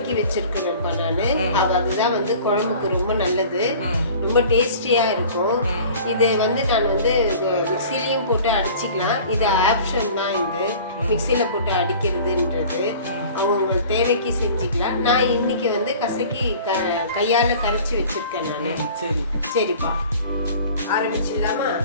வச்சிருக்கிறேன்ப்பா நான். அதுதான் வந்து குழம்புக்கு ரொம்ப நல்லது, ரொம்ப டேஸ்டியாக இருக்கும். இது வந்து நான் வந்து மிக்சிலையும் போட்டு அடிச்சிக்கலாம். இது ஆப்ஷன் தான். இது மிக்சியில் போட்டு அடிக்கிறதுன்றது அவங்க தேவைக்கு செஞ்சுக்கலாம். நான் இன்னைக்கு வந்து கசக்கி கையால் கரைச்சி வச்சிருக்கேன் நான். சரிப்பா, ஆரம்பிச்சிடலாமா?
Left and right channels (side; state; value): both; inverted; correlation -0.44